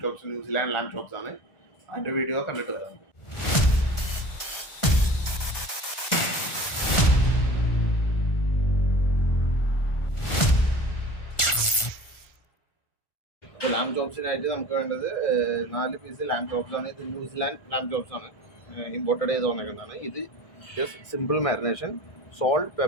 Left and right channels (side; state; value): right; late; 1.4 ms